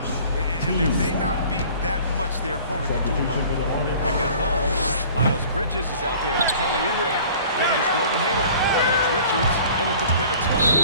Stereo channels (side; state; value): both; inverted; correlation -0.48